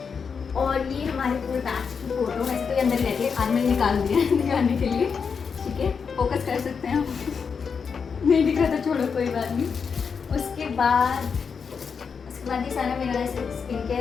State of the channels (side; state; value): right; quieter; 5.9 dB